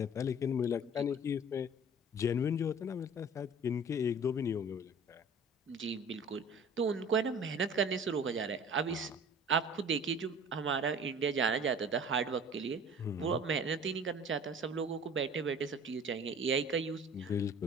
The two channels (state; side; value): normal; both; correlation 0.45